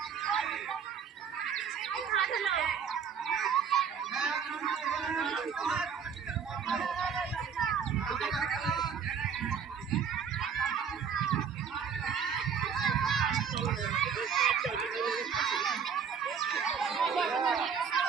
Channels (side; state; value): left; quieter; 6.9 dB